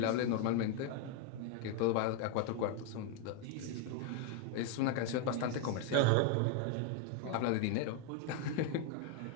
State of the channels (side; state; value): both; different; correlation 0.01